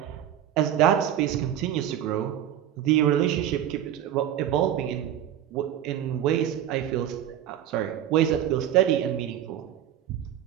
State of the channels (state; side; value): quieter; left; 10.9 dB